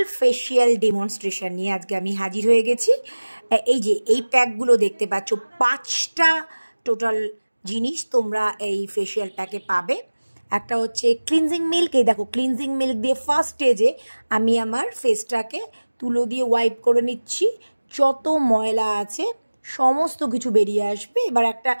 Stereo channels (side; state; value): both; inverted; correlation -1.00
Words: ফেসিয়াল ডেমনস্ট্রেশন নিয়ে আজকে আমি হাজির হয়ে গেছি। এই যে এই প্যাকগুলো দেখতে পাচ্ছ, 5টা টোটাল জিনিস তোমরা এই ফেসিয়াল প্যাকে পাবে। একটা হচ্ছে ক্লিনজিং মিল্ক। এই দেখো, ক্লিনজিং মিল্ক দিয়ে ফার্স্ট স্টেজে আমি আমার ফেসটাকে তুলো দিয়ে ওয়াইপ করে নিচ্ছি। যত ময়লা আছে সমস্ত কিছু বেরিয়ে আসবে। এবার একটা